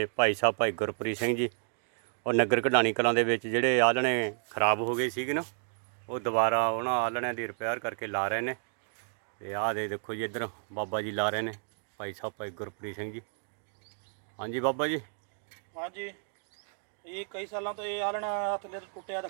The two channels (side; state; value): left; silent; 57 dB below the other